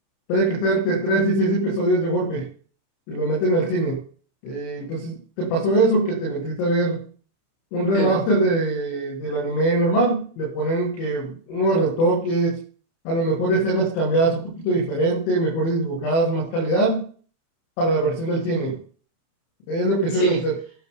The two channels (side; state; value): right; late; 31 ms